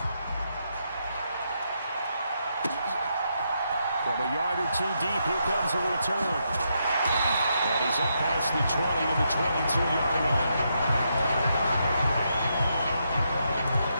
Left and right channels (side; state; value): both; inverted; correlation -0.80